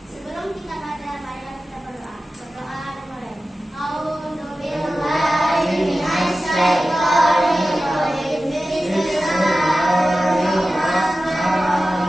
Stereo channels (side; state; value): both; normal; correlation 0.94